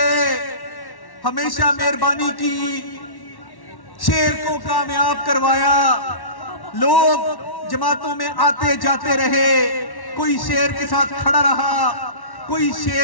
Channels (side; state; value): right; late; 1.1 ms